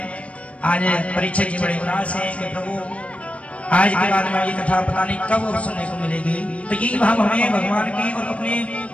आज परीक्षित जी बड़े उदास हैं कि प्रभु आज के बाद में ये कथा पता नहीं कब अब सुनने को मिलेगी। तो यही भाव हमें भगवान के और अपने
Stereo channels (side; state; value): right; late; 0.063 ms